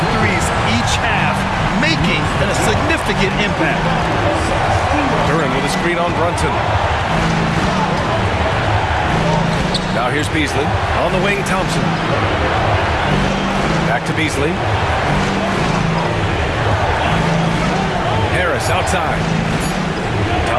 threes each half, making a significant impact. Duren with a screen on Brunson. Now here's Beasley. On the wing, Thompson. Back to Beasley. Harris outside.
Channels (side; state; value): both; identical; correlation 1.00